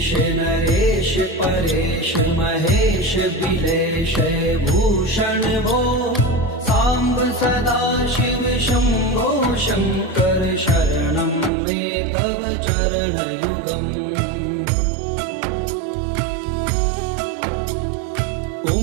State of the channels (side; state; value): left; drops out; at 11.5 s